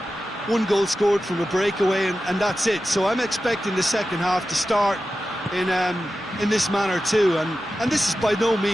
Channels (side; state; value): both; normal; correlation 0.93